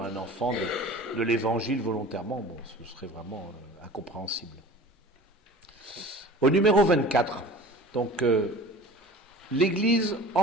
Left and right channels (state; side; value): normal; both; correlation 0.41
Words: un enfant de l'évangile volontairement. Bon, ce serait vraiment incompréhensible. Au numéro 24, donc, l'Église